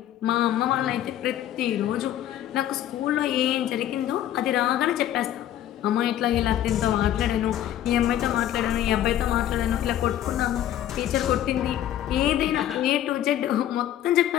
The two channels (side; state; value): right; quieter; 11.9 dB